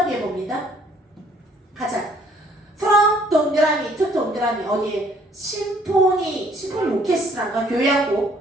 뒤에 봅니다. 가자. from 동그라미 to 동그라미 어디에? 심포니 오케스트라인가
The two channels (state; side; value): normal; both; correlation 0.61